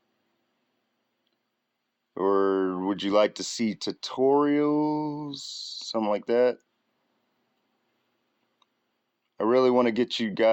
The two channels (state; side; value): identical; both; correlation 1.00